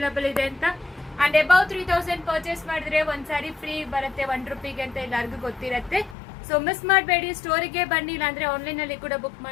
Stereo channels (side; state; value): right; drops out; at 6.2 s